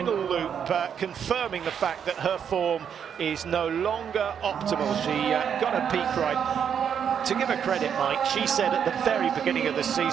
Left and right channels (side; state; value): left; quieter; 7.9 dB